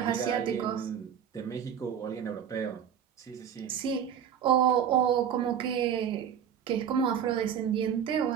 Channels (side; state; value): left; quieter; 8.6 dB